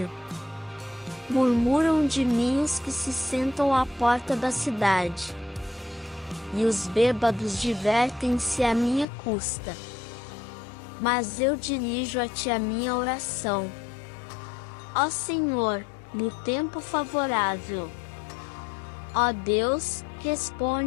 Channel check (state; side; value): drops out; right; at 9.1 s